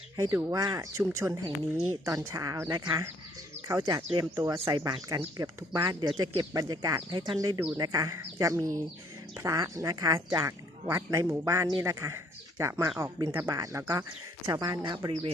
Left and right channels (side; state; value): both; normal; correlation 0.63